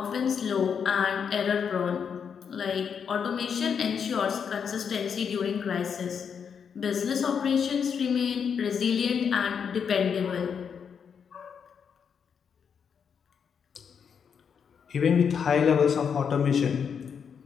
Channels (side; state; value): right; quieter; 7.0 dB